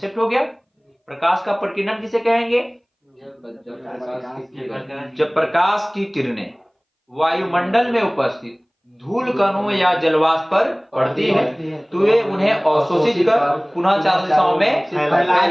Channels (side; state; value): both; identical; correlation 1.00